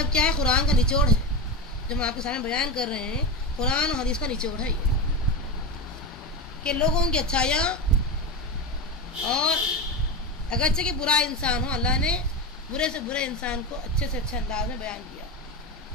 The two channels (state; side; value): normal; both; correlation 0.19